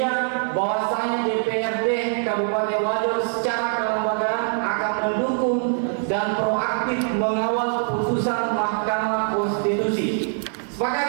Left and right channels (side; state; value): left; silent; 58 dB below the other